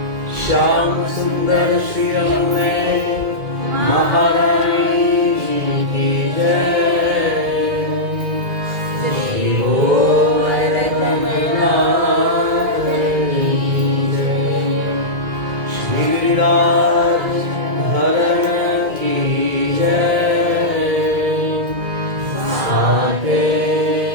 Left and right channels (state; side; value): late; left; 2.2 ms